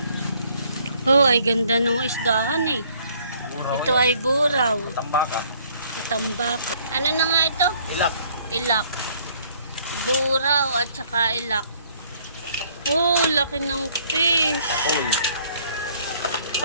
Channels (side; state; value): both; inverted; correlation -0.62